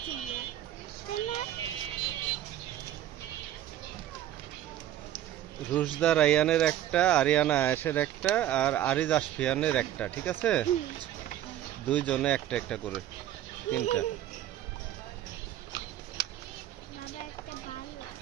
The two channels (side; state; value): left; quieter; 12.2 dB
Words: ছিল কেনা রুশদা রায়ানের একটা, আরিয়ানা আয়েশের একটা, আর আরিজ আশফিয়ানের একটা, ঠিক আছে? দুইজনে একটা একটা করে, তিনটা। বাবা একটা ভালো